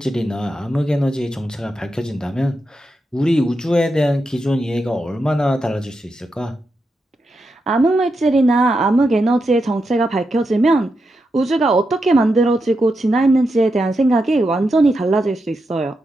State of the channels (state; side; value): normal; both; correlation 0.86